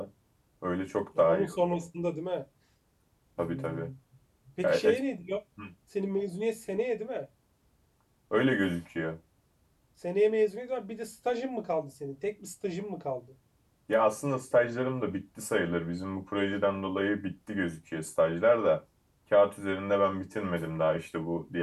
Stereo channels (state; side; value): identical; both; correlation 1.00